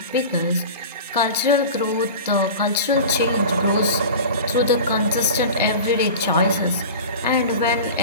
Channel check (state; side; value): inverted; both; correlation -0.34